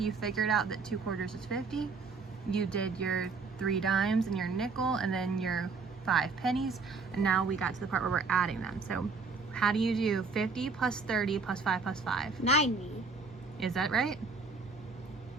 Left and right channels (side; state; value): left; quieter; 4.4 dB